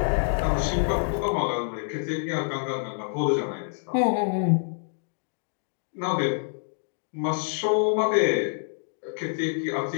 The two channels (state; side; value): silent; right; 60 dB below the other